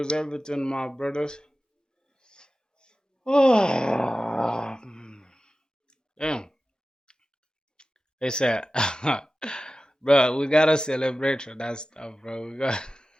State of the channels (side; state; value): both; normal; correlation 0.95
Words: everything, my brothers? Oh, damn. They said, bro, we gotta celebrate for that stuff, bro. We got.